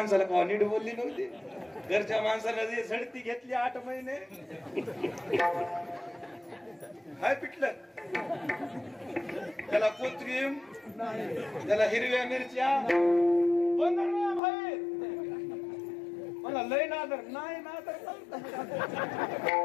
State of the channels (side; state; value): right; drops out; at 14.4 s